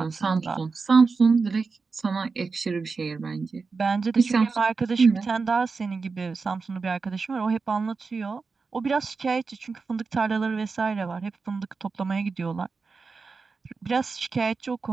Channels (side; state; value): left; quieter; 4.5 dB